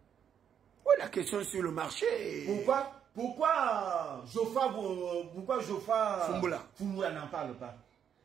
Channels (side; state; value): left; quieter; 8.5 dB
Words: Oui, la question sur le marché. Pourquoi Geoffroy Fumula n'en parle pas?